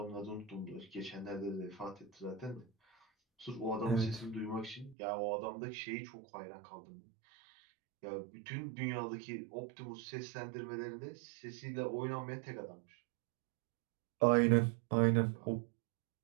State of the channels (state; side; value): drops out; left; at 5.0 s